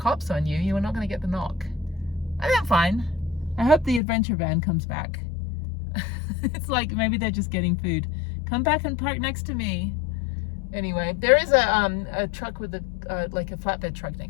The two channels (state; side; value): drops out; right; at 4.0 s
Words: on you, you are not going to get the knock. I think I'm fine. I hope the adventure van comes back. It's like maybe they're just getting food. Come back and park next to me. Anyway, there is a truck with like a flatbed truck